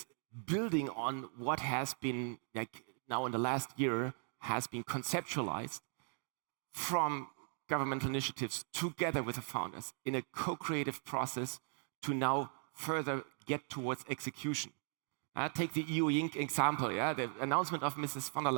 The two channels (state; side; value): silent; left; 52 dB below the other